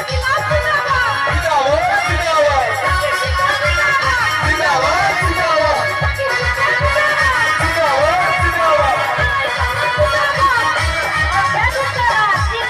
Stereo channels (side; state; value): both; identical; correlation 1.00